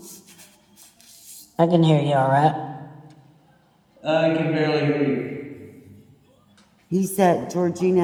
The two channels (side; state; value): both; identical; correlation 1.00